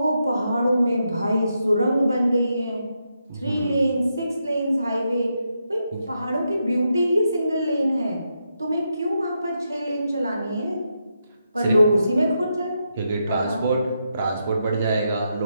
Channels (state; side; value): inverted; both; correlation -0.83